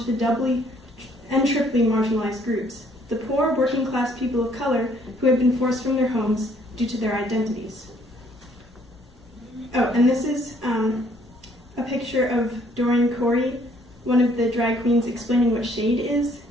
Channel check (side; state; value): both; normal; correlation 0.64